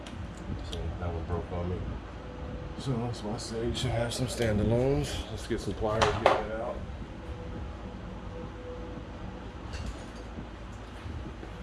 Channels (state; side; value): identical; both; correlation 1.00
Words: See, that one broke on me. So that's why I say you should have some standalones. Let's get some pliers, get that out.